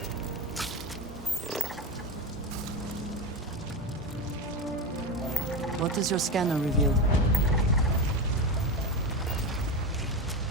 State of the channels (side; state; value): both; normal; correlation 0.18